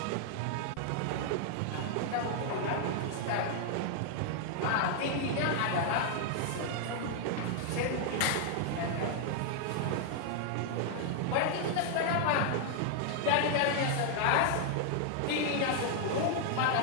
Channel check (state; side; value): different; both; correlation 0.00